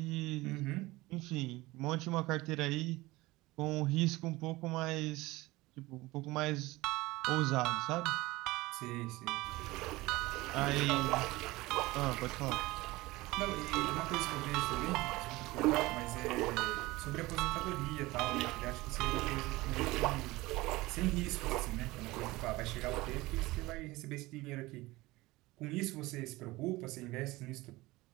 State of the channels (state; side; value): quieter; left; 20.2 dB